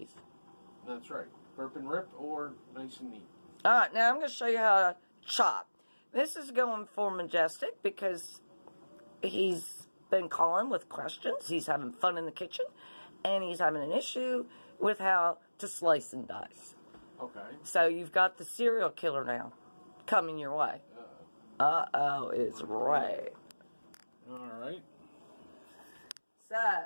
That's right. Burp and rip or nice and neat. Alright, now I'm going to show you how to chop. This is going for Majestic because he's been calling with questions. He's having fun in the kitchen. And he's having an issue with how to slice and dice. Okay. So you've got the serial killer now coming your way. Uh-oh is right. Alright. So,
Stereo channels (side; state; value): both; inverted; correlation -1.00